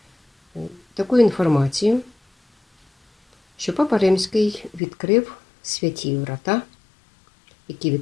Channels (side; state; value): right; drops out; at 4.8 s